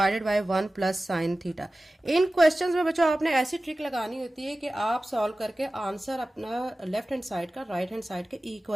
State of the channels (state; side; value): normal; both; correlation 0.96